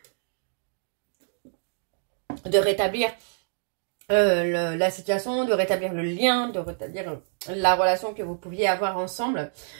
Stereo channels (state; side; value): silent; left; digital silence